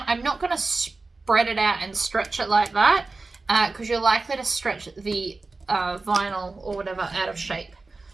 I'm not going to spread it out and stretch it like that, because you're likely to stretch the vinyl or whatever out of shape.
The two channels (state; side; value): quieter; left; 3.6 dB